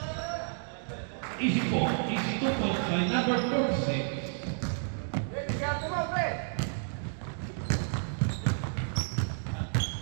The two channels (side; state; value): left; silent; digital silence